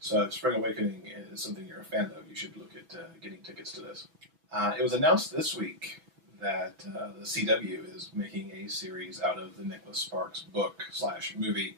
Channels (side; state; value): left; late; 6.1 ms